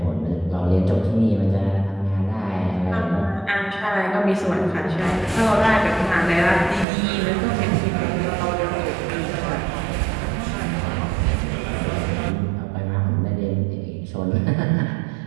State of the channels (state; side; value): drops out; left; at 6.9 s